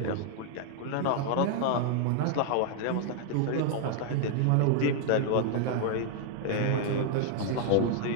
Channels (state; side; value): different; both; correlation 0.00